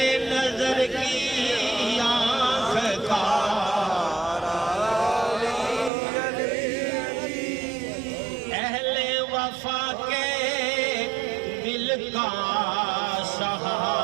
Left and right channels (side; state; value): left; drops out; at 5.9 s